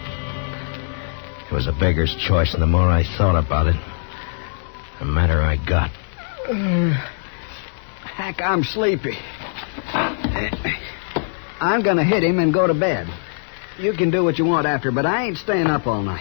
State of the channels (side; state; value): right; silent; digital silence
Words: It was a beggar's choice, and the more I thought about it, the madder I got. Hack, I'm sleepy. I'm going to hit him and go to bed. You can do what you want after, but I ain't staying up all night.